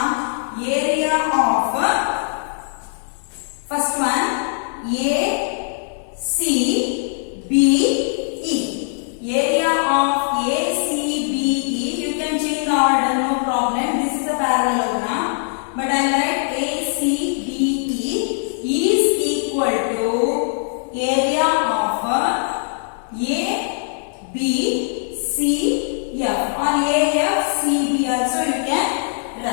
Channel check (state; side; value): silent; right; 61 dB below the other